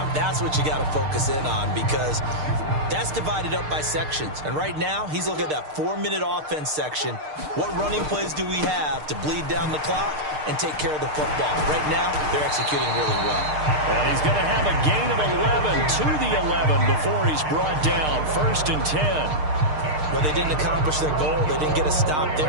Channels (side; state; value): left; late; 6.6 ms